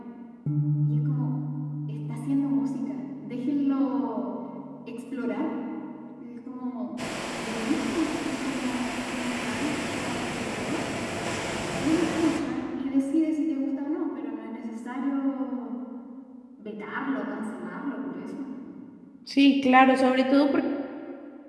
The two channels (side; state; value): both; identical; correlation 1.00